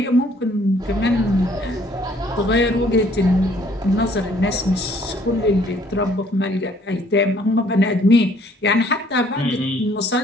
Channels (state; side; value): normal; both; correlation 0.61